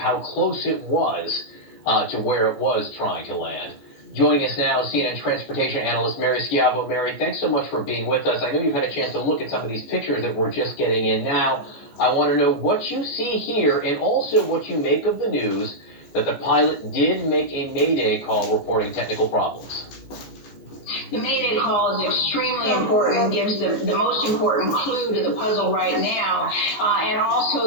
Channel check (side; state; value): right; late; 15 ms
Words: close it was to where it was trying to land. Joining us now, CNN transportation analyst Mary Schiavo. Mary, thanks so much for being with us. I know you've had a chance to look at some of these pictures that we're just getting in now. I want to know what you see here and also what you make of the news that the pilot did make a mayday call reporting technical problems. The mayday call is extremely important and gives the most important clue to the puzzle right now, and